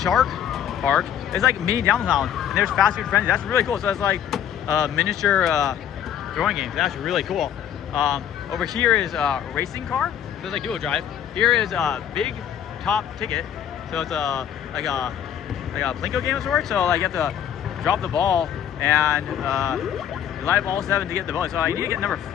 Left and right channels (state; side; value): quieter; right; 9.6 dB